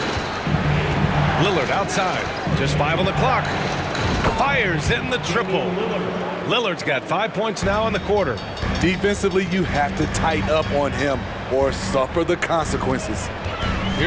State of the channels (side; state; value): both; identical; correlation 1.00